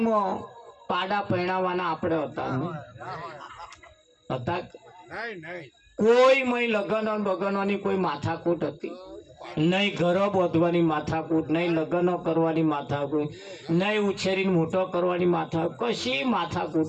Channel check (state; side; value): identical; both; correlation 1.00